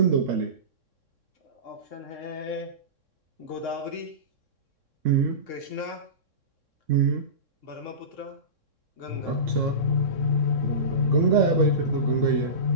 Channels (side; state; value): left; late; 3.6 ms